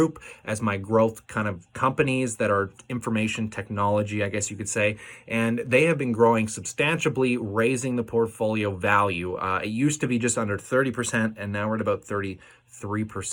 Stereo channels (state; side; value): identical; both; correlation 1.00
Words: as my growth kind of companies that are information technology, I guess you could say. And they have been growing substantially, raising the portfolio value. It used to be just under 30%, and now we're at about 33%.